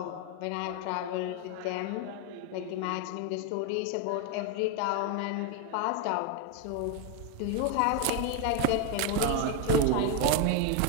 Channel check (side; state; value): both; different; correlation 0.01